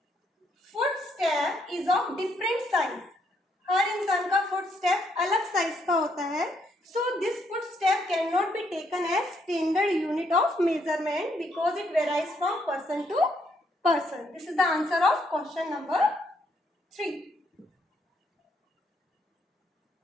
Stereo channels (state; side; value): normal; both; correlation 0.73